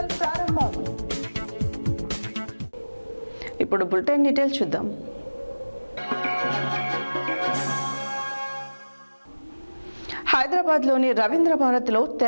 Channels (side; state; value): both; inverted; correlation -1.00